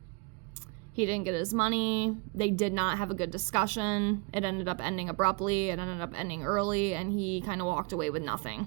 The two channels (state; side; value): quieter; left; 28.9 dB